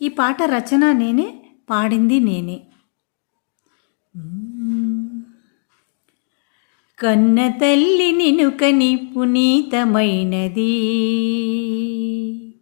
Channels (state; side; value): silent; right; 62 dB below the other